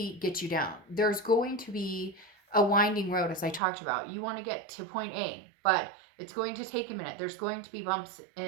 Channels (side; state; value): left; drops out; at 3.6 s